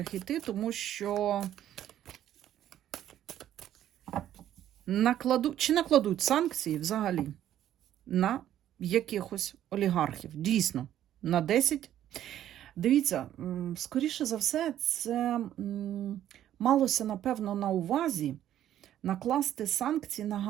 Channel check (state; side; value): quieter; left; 11.6 dB